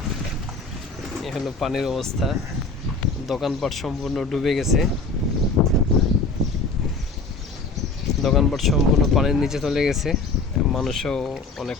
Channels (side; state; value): right; quieter; 3.7 dB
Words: এই হলো পানির অবস্থা। দোকানপাট সম্পূর্ণ ডুবে গেছে, দোকানপাট সম্পূর্ণ পানির নিচে চলে গেছে। মানুষও অনেক